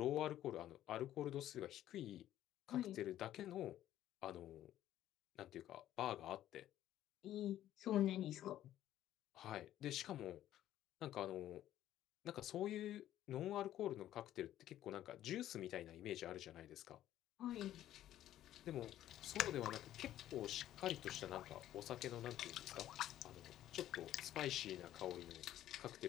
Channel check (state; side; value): quieter; right; 12.7 dB